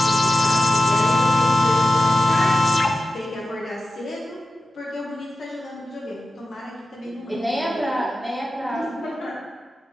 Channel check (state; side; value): normal; both; correlation 0.93